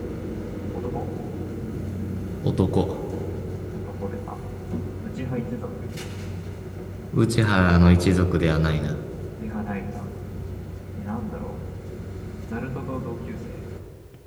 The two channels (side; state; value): both; identical; correlation 1.00